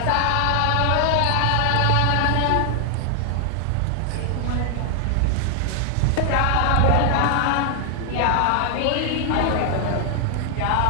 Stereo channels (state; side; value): different; both; correlation 0.00